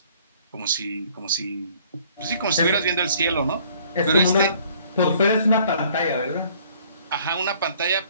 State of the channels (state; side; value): inverted; both; correlation -0.58